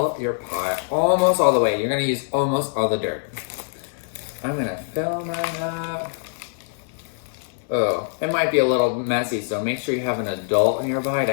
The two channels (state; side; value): silent; right; digital silence